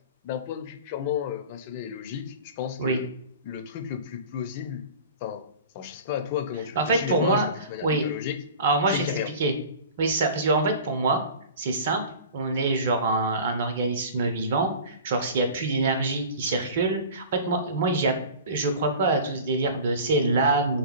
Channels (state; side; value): inverted; both; correlation -0.39